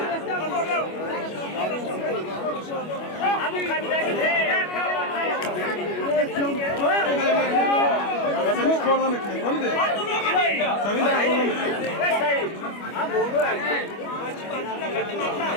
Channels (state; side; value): late; right; 25 ms